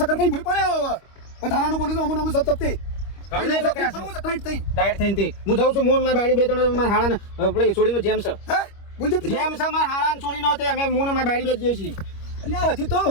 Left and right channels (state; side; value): late; right; 25 ms